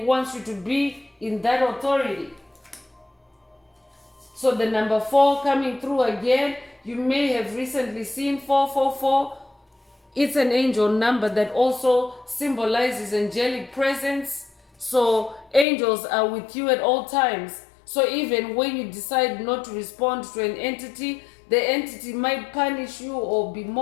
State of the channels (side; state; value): right; drops out; at 15.7 s